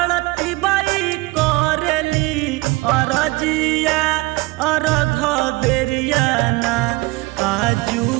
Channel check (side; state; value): left; quieter; 22.5 dB